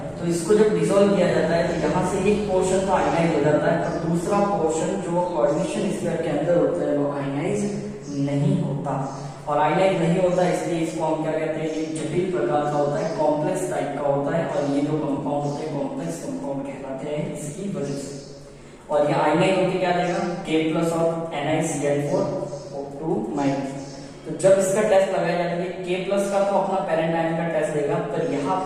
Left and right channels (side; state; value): both; identical; correlation 1.00